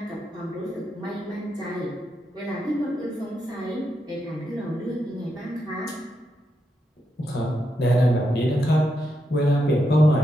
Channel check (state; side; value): normal; both; correlation 0.83